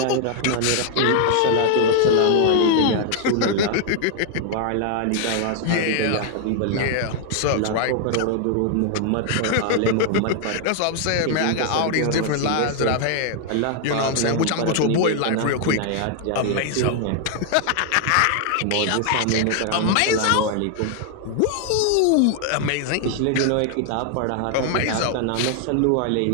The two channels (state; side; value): different; both; correlation 0.00